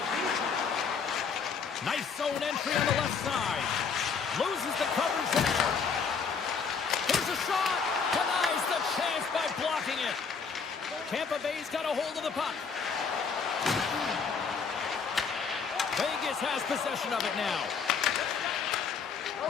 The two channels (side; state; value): right; quieter; 5.8 dB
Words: Nice zone entry on the left side. Loses the coverage there. Here's a shot. Denies the chance by blocking it. Tampa Bay's got a hold of the puck. Vegas has possession of it now.